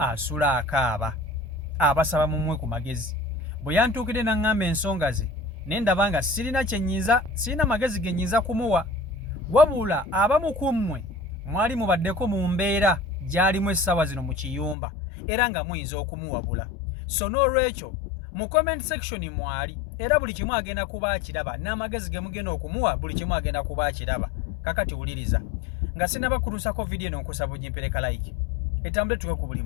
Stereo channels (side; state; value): right; drops out; at 14.8 s